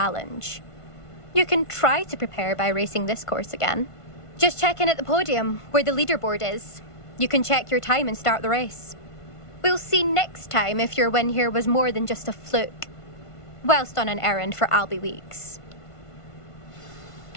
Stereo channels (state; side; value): late; right; 1.5 ms